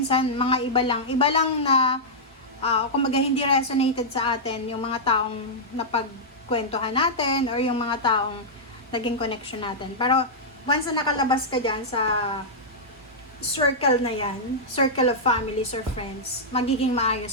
mga iba lang na, kumbaga hindi resonated sa atin yung mga taong napagkwentuhan natin or yung mga taong naging connection natin. Pero, once na nakalabas ka dyan sa circle na yan, circle of families or friends, magiging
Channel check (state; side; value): normal; both; correlation -0.09